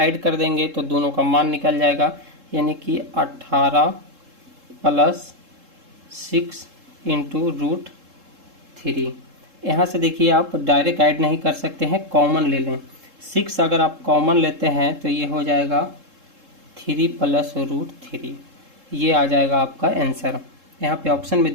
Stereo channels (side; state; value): left; late; 3.7 ms